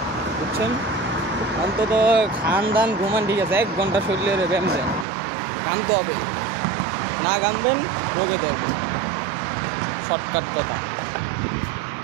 বুঝছেন। অন্তত খান দান ঘুমান ঠিক আছে, 1 ঘন্টা শরীরে ব্যায়াম দেন, ঘামতে হবে, না ঘামবেন রোগে ধরবে, শর্টকাট কথা।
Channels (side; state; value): left; drops out; at 5.1 s